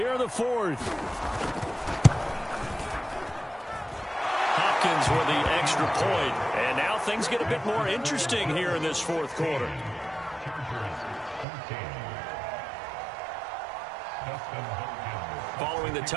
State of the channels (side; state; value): left; drops out; at 11.5 s